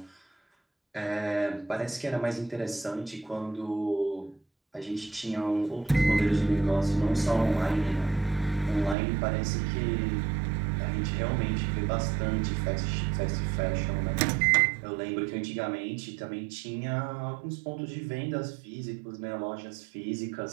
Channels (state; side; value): drops out; left; at 9.0 s